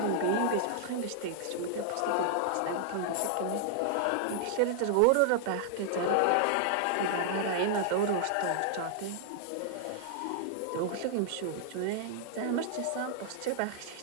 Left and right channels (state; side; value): different; both; correlation -0.01